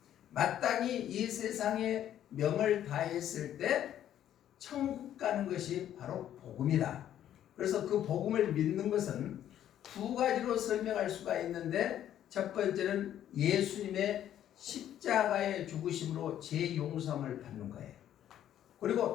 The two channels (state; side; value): quieter; right; 11.1 dB